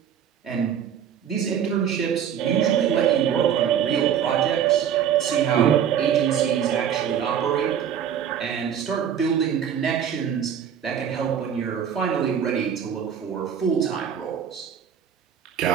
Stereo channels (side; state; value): left; quieter; 8.6 dB